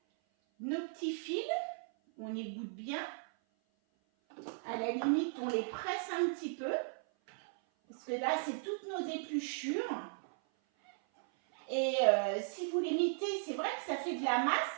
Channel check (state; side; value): silent; left; 53 dB below the other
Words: fils. On égoutte bien. À la limite, on les presse un petit peu. Parce que là, c'est toutes nos épluchures. Et si vous les mettez, c'est vrai que ça fait de la